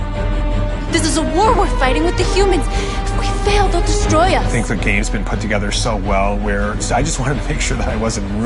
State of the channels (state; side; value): identical; both; correlation 1.00